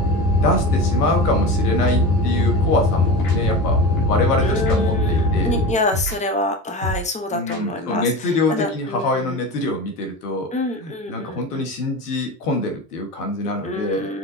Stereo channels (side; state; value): both; normal; correlation 0.27